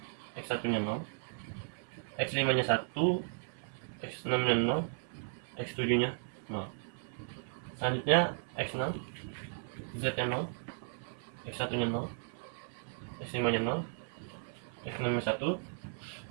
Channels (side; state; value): left; silent; 54 dB below the other